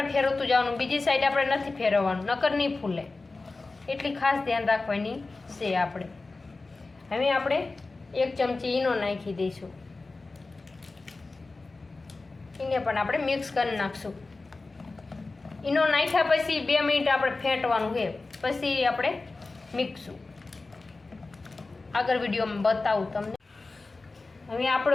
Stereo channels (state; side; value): quieter; right; 3.5 dB